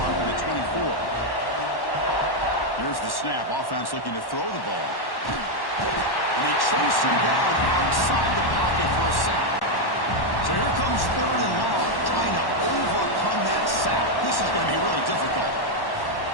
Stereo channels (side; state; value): right; late; 1.1 ms